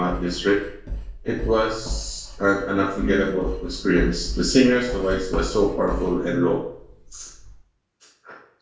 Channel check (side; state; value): both; identical; correlation 1.00